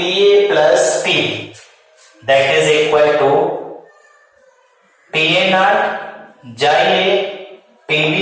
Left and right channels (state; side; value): identical; both; correlation 1.00